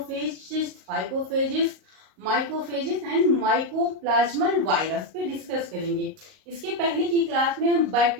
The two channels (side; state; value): left; late; 38 ms